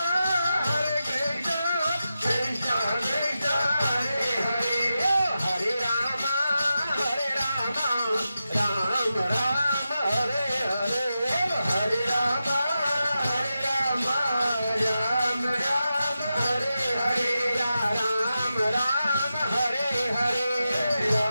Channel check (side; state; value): both; inverted; correlation -0.91